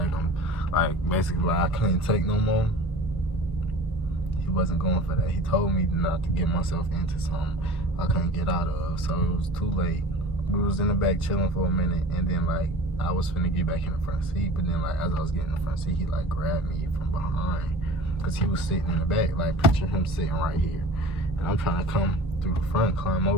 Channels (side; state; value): both; normal; correlation 0.40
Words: I'm like basically like I couldn't take no more. He wasn't going for that. He told me not to get myself into something I couldn't get out of. So it was too late. We was in the back chilling for a minute, and then like I was finna get back in the front seat, but then like as I was getting in the front seat, he like grabbed me from behind, cause he was sitting in the back. Like picture him sitting right here, and I'm trying to come through the front, climb